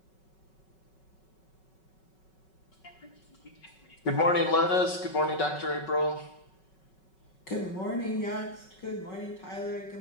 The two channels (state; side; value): late; right; 5.3 ms